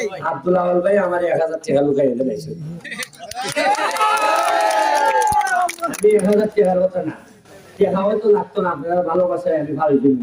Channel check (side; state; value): both; identical; correlation 1.00